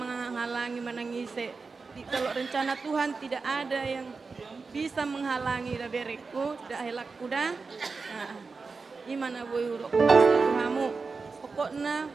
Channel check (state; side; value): quieter; left; 4.4 dB